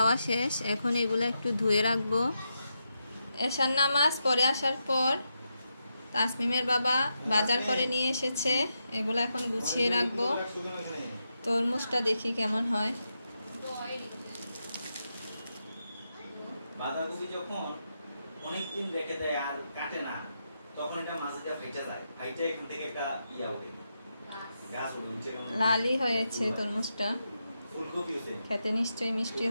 শেষ। এখন এগুলো একটু ধুয়ে রাখবো। এশার নামাজ পড়ে আসার পর তাসমিমের বাবা বাজার করে নিয়ে এসেছে। এগুলো এখন গুছিয়ে রাখবো। তরমুজটা দেখি কেমন হয়। বাঁধাকপি যখন অনেকদিন রেখে দেয় আর কাটে না, তখন এটা মাঝে দিয়ে ফাইটা যায়। ফাইটা এখান থেকে একটা ইয়া ওঠে, গাছ ওঠে নিচে। লালই হয়েছে তরমুজটা, ফুলকপি আছে, খেতে নিশ্চয়ই মিষ্টি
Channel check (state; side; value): inverted; both; correlation -0.85